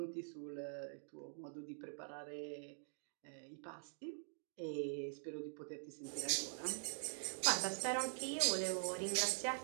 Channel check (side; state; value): left; silent; digital silence